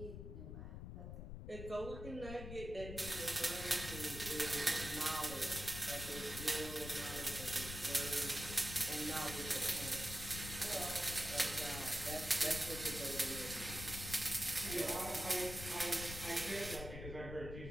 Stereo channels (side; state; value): left; noise; rumble, 8 dB below the sound